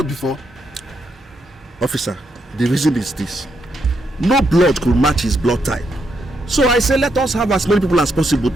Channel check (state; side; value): normal; both; correlation 0.80